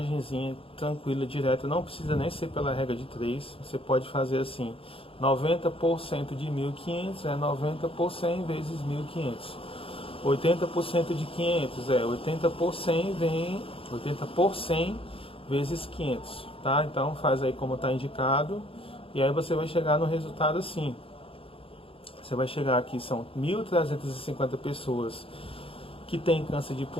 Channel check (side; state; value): right; late; 0.27 ms